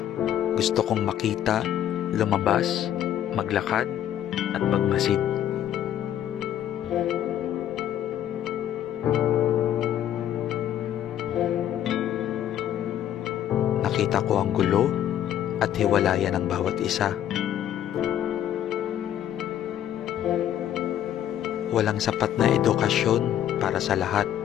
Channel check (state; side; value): quieter; right; 11.0 dB